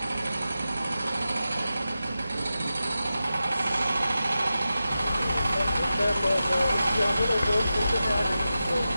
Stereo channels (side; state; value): both; inverted; correlation -0.93